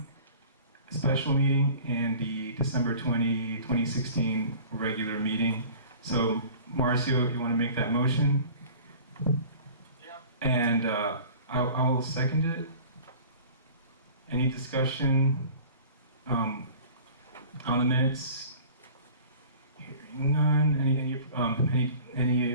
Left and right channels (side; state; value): both; inverted; correlation -0.44